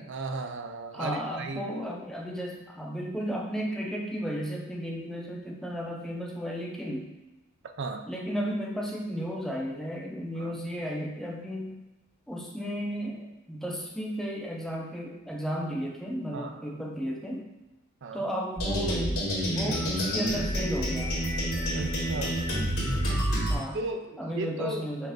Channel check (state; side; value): normal; both; correlation 0.66